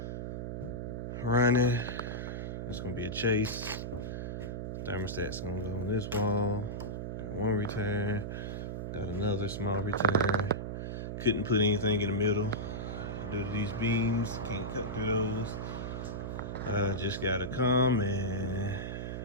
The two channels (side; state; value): right; noise; hum, 4 dB below the sound